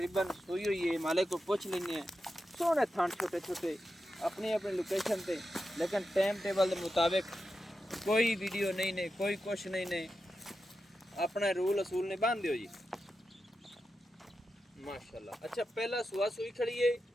सोई हुई है, मालिक को पूछ लेने हैं। सोहने थान छोटे छोटे अपनी अपनी लोकेशन पे, लेकिन टाइम टेबल के मुताबिक कोई वीडियो नहीं ने, कोई कुछ नहीं ने, अपना रूल असूल ने बांध दियो जी माशाल्लाह। अच्छा पहला सुआ सुई खड़ी है,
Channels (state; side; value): normal; both; correlation 0.90